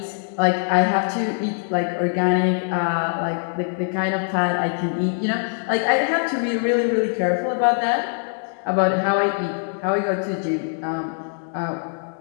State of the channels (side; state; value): right; silent; 61 dB below the other